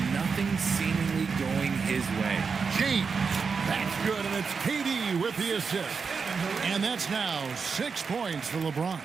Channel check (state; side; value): quieter; left; 5.4 dB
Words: Nothing seemingly going his way. James. That's good, and it's KD with the assist. And that's now 6 points for LeBron.